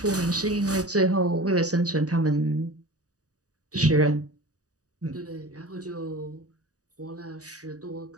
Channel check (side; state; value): left; late; 0.67 ms